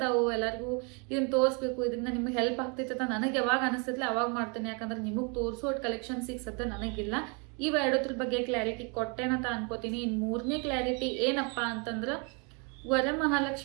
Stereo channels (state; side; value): quieter; left; 34.2 dB